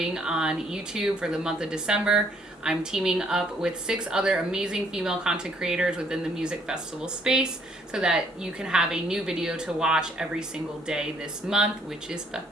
on YouTube for the month of December. I'm teaming up with 6 other amazing female content creators within the music festival space so that you can have a new video to watch every single day this month, which is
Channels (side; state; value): both; normal; correlation 0.65